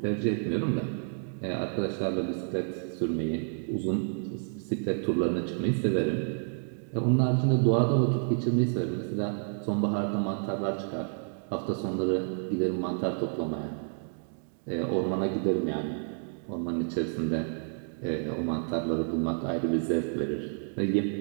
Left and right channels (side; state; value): left; silent; 58 dB below the other